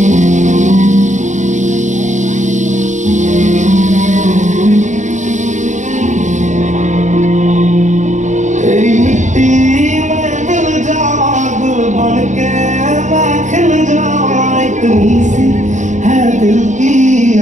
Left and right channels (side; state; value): left; late; 0.35 ms